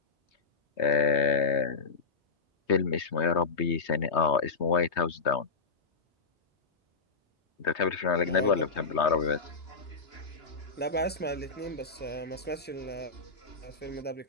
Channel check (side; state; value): right; quieter; 4.5 dB